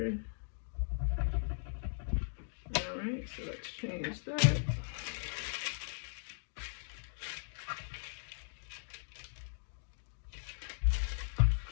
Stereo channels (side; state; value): right; silent; digital silence